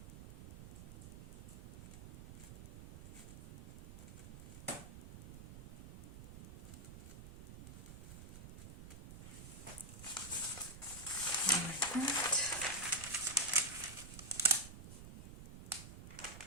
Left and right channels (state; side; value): noise; right; rumble, 13 dB below the sound